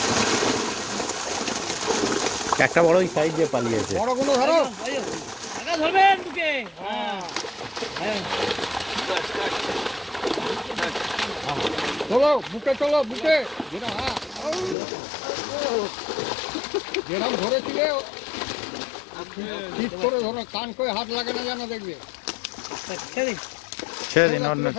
একটা বড় ওই সাইড দিয়ে পালিয়েছে। বড়গুলো ধরো, ধরবেন বুকে। হ্যাঁ চলো বুকে, চলো বুকে। যেরকম ধরেছিলে ঠিক করে ধরো, কান করে হাত লাগে না যেন, দেখবে। ছেড়ে দিন, অন্য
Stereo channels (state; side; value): drops out; right; at 14.8 s